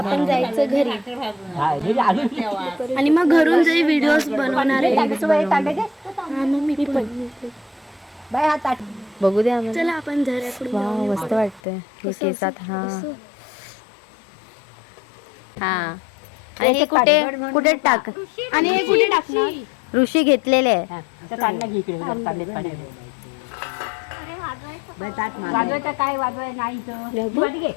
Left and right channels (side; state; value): right; drops out; at 11.6 s